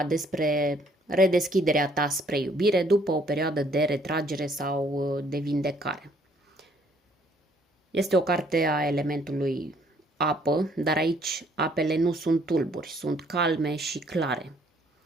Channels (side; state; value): both; normal; correlation 0.64